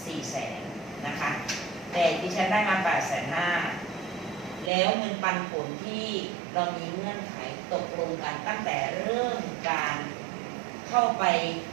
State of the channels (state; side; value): drops out; left; at 4.7 s